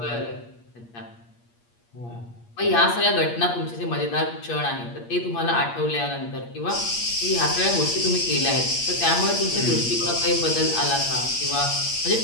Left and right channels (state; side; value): late; right; 8.5 ms